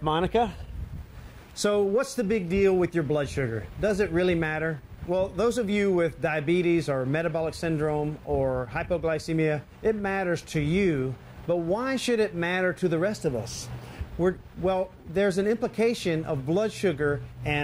Monica. So what's the big deal with your blood sugar? Does it really matter? Well, those of you with diabetes or metabolic syndrome or hypoglycemia, it matters to you, but why should it matter to the rest of us? Well, there's an implication of blood sugar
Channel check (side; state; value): both; identical; correlation 1.00